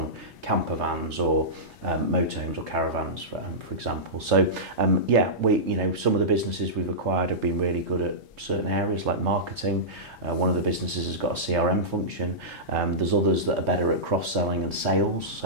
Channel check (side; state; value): both; normal; correlation -0.16